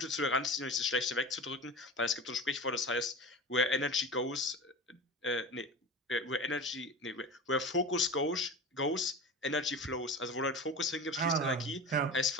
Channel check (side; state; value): both; normal; correlation 0.30